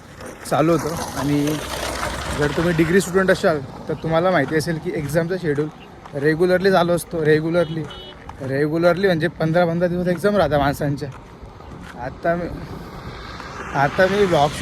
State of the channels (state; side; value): identical; both; correlation 1.00